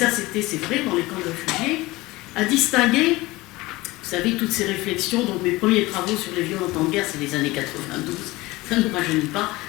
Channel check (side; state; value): right; quieter; 20.4 dB